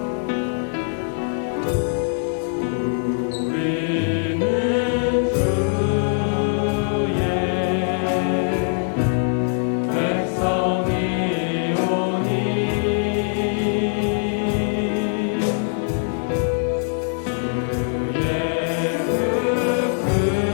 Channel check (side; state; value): right; silent; digital silence